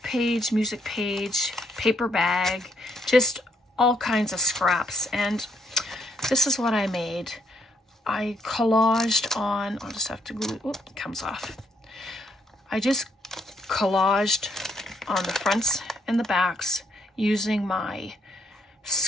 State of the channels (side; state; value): both; normal; correlation 0.72